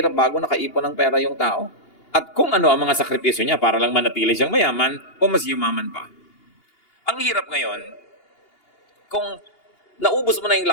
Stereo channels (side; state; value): right; late; 2.8 ms